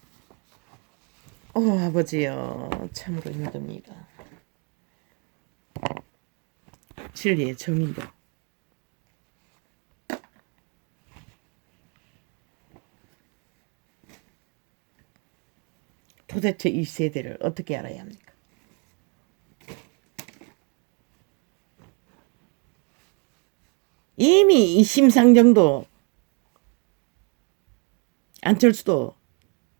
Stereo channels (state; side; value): quieter; left; 35.4 dB